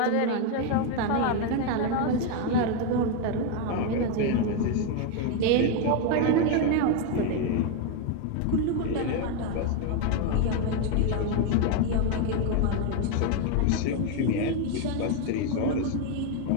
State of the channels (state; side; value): different; both; correlation 0.01